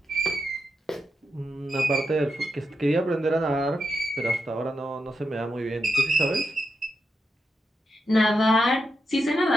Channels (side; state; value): both; normal; correlation 0.86